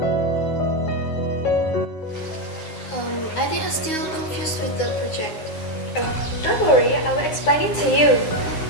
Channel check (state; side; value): late; right; 9.5 ms